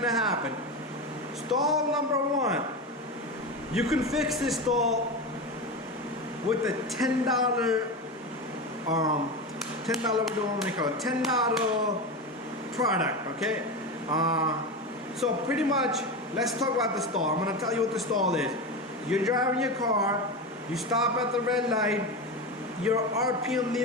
happen. Stall number 1. You can fix this stall with a $10, what do I want to call it? $10 product, okay? So pretty much, let's talk about the stall. I'm gonna tell you what the stall is. You're driving your car, you stop at the red light, your RPM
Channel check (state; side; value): normal; both; correlation 0.20